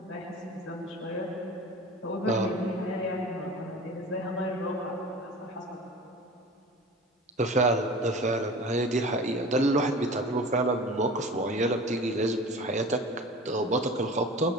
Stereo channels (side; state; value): both; normal; correlation 0.38